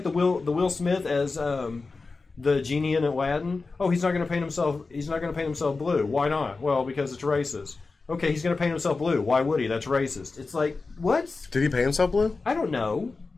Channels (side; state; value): right; quieter; 4.0 dB